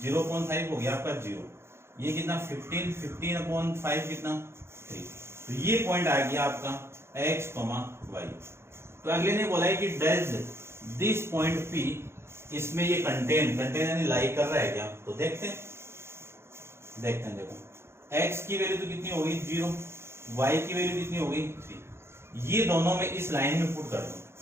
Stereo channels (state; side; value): late; left; 0.12 ms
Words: 0.5 हो गया आपका 0, ये कितना 15/5 कितना 3। तो ये पॉइंट आ गया आपका x, y। तो अगले ने बोला है कि डज दिस पॉइंट P, इसमें ये कंटेन यानी लाई कर रहा है क्या, तो देखते हैं। देखो x की वैल्यू तो कितनी होगी 0, y की वैल्यू कितनी होगी 3, ये दोनों में इस लाइन में पुट कर दो,